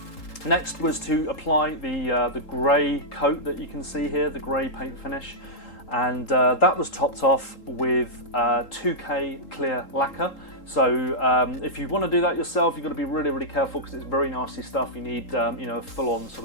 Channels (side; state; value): right; late; 3.8 ms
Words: next was to apply the grey coat that you can see here, the grey paint finish, and that was topped off with 2K clear lacquer. So if you want to do that yourself, you've got to be really, really careful because it's very nasty stuff. You need a full-on sort